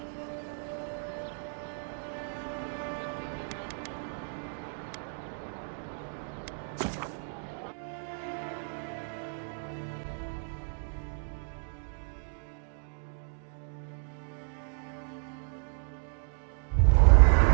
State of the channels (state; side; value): silent; left; 57 dB below the other